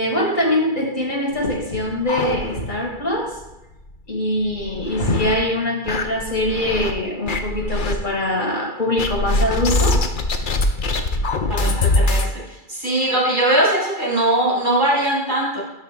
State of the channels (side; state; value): right; late; 2.3 ms